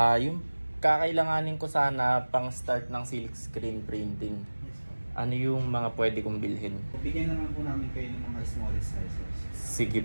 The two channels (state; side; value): inverted; both; correlation -1.00